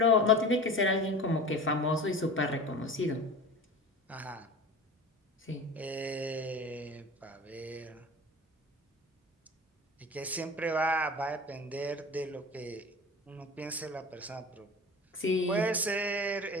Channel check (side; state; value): both; normal; correlation 0.35